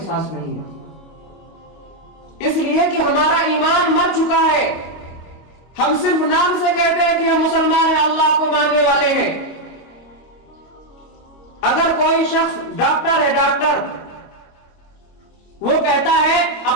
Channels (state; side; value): late; right; 25 ms